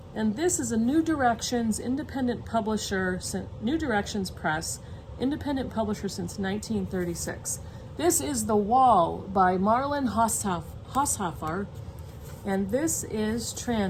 And this is a New Directions independent publisher, New Directions Press, independent publisher since 1936. This is The Wall by Marlon Haushofer, and this is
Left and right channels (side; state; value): both; identical; correlation 1.00